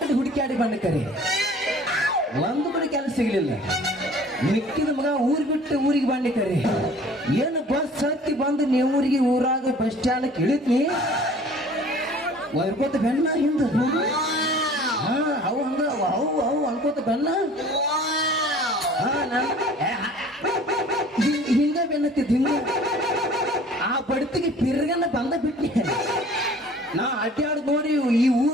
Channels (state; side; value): normal; both; correlation 0.49